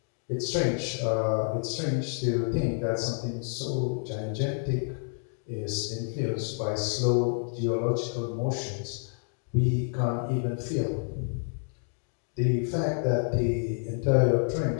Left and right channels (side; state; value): right; silent; 59 dB below the other